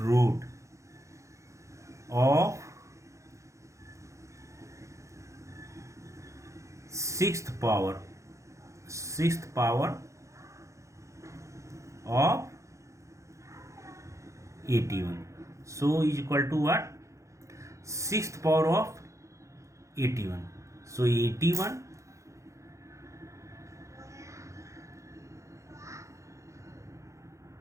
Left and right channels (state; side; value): late; left; 0.15 ms